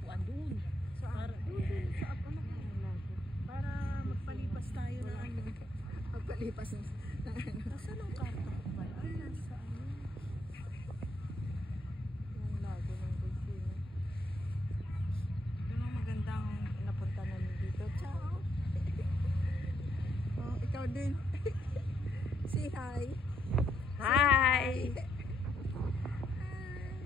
doon. Para doon sa para magpalipas tayo na ano. Magpalipas na ano. Nasaan ang karta ko ba? Ay, nasa ano. Yung lago ng Bolsena. Ito ang magandang napunta namin dito. Ciao! Oh, ikaw din. Say hi. Hi!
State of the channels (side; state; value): both; normal; correlation 0.76